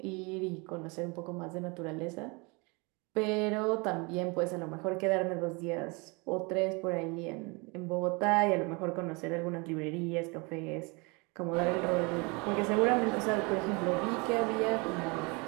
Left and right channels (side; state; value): left; quieter; 28.9 dB